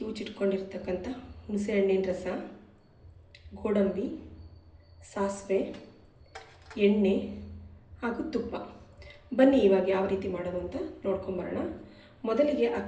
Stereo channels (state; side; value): identical; both; correlation 1.00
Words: ಹುಣಸೆಹಣ್ಣಿನ ರಸ, ಗೋಡಂಬಿ, ಸಾಸಿವೆ, ಎಣ್ಣೆ ಹಾಗೂ ತುಪ್ಪ. ಬನ್ನಿ ಇವಾಗ ಯಾವ ರೀತಿ ಮಾಡೋದು ಅಂತ ನೋಡ್ಕೊಂಬರೋಣ. ಮೊದಲಿಗೆ